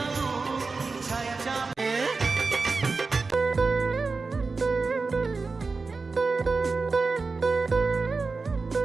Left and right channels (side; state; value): left; quieter; 4.1 dB